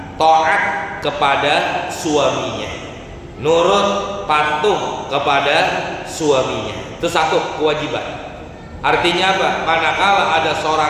taat kepada suaminya, nurut patuh kepada suaminya. Itu satu kewajiban. Artinya apa? Manakala ada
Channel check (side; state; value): both; identical; correlation 1.00